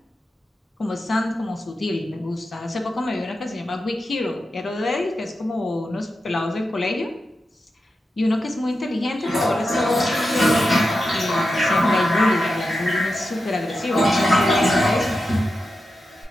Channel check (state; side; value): normal; both; correlation 0.89